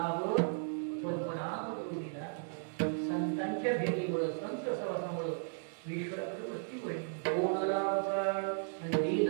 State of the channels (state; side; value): silent; left; digital silence